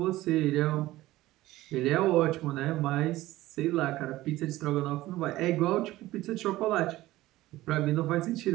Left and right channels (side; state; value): left; quieter; 16.8 dB